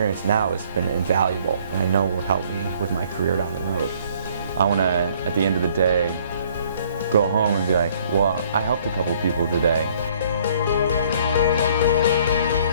now has been invaluable, and I know will help me with my career down the road. I want to, at the end of the day, go home and be like, well, I helped a couple people today.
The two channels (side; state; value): both; inverted; correlation -0.60